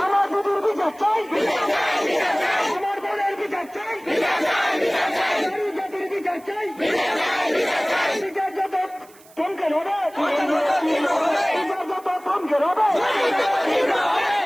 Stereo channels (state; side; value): noise; right; hiss, 26 dB below the sound